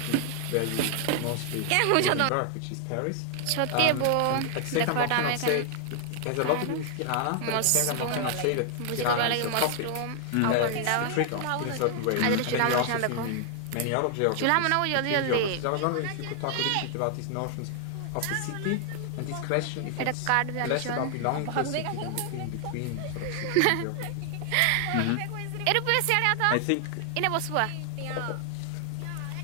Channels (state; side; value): different; both; correlation 0.00